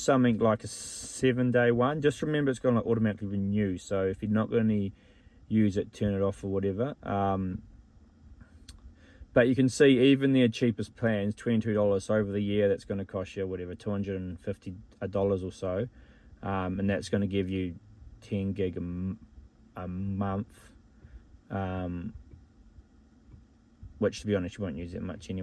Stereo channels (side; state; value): both; identical; correlation 1.00